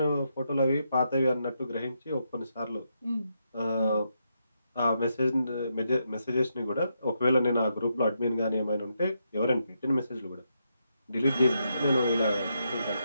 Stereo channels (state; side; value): inverted; both; correlation -0.81